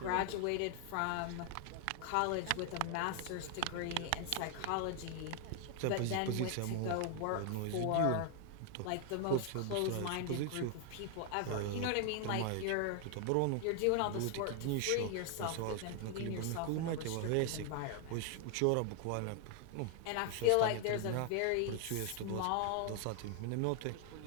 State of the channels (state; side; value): different; both; correlation 0.00